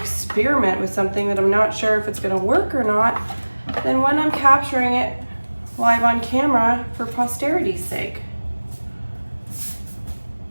with something that I'm not sure if it's going to work or not than when I'm capturing it live on camera for posterity's sake.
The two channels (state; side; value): inverted; both; correlation -1.00